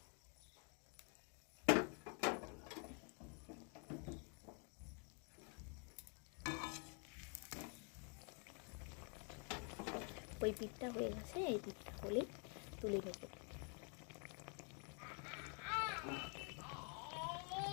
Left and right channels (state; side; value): quieter; right; 39.1 dB